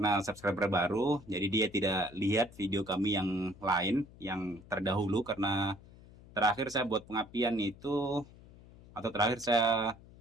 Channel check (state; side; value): noise; left; hum, 21 dB below the sound